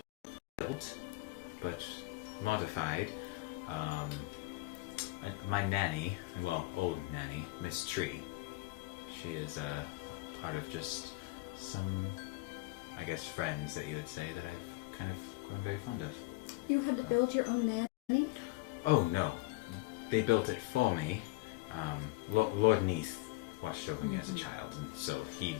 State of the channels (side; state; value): right; quieter; 20.8 dB